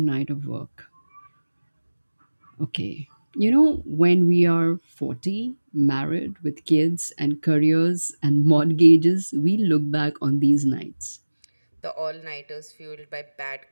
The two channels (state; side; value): inverted; both; correlation -1.00